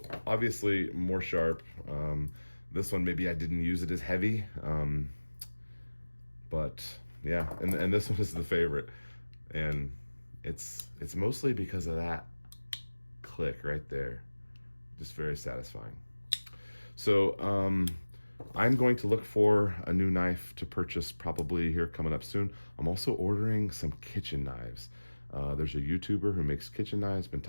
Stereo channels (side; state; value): both; inverted; correlation -1.00